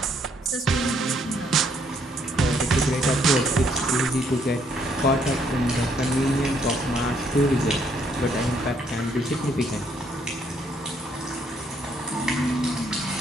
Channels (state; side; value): normal; both; correlation 0.70